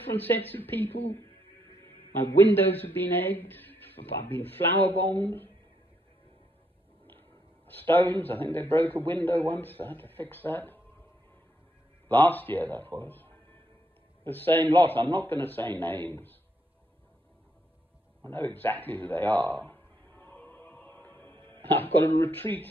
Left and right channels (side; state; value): both; normal; correlation 0.76